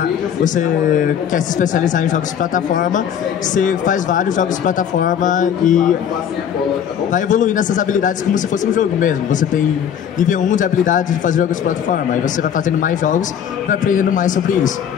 quer se especializar em jogos de plataforma, você faz vários jogos de plataforma e vai evoluindo essas habilidades como se fosse um jogo mesmo. Você tem nível 1 de habilidade de fazer jogos de plataforma, aí você vai fazendo mais jogos e vai aprendendo mais sobre isso.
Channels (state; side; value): quieter; right; 8.7 dB